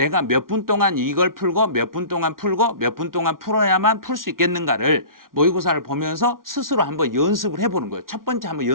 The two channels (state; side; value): late; left; 0.92 ms